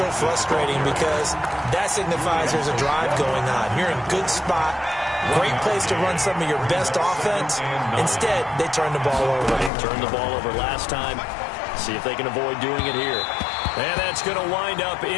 frustrating because that signifies there's a drive going on. You're in a good spot. Great place to run some of your best offense. Instead, they turn the ball over. They turned the ball over last time. See if they can avoid doing it here. And that's going to wind up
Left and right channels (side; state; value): right; drops out; at 9.7 s